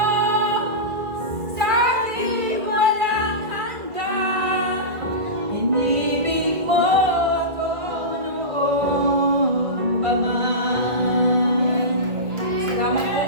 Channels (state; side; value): late; left; 1.9 ms